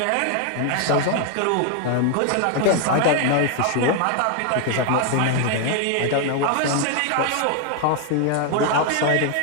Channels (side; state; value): both; different; correlation 0.01